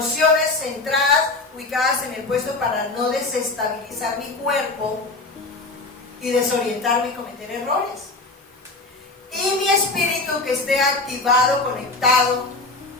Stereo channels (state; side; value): quieter; right; 3.3 dB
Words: centradas, ubicadas en el puesto para no desestabilizar mi cuerpo y desorientarme y cometer errores. Y mi espíritu que esté activado, conectado